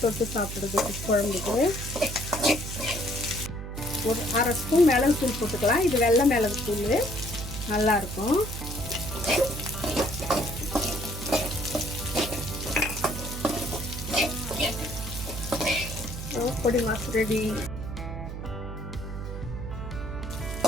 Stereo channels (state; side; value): noise; right; hum, 7 dB below the sound